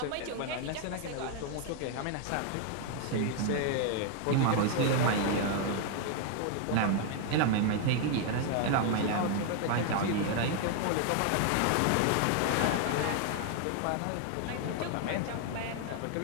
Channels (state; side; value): different; both; correlation 0.00